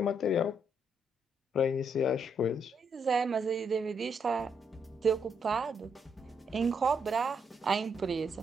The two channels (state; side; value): normal; both; correlation 0.76